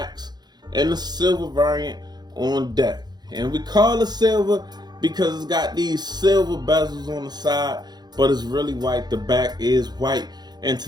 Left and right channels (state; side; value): late; left; 0.20 ms